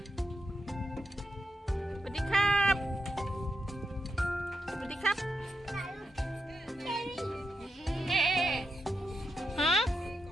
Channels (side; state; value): both; normal; correlation 0.86